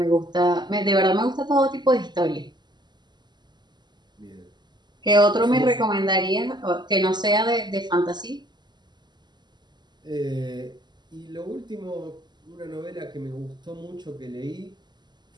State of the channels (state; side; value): late; left; 0.21 ms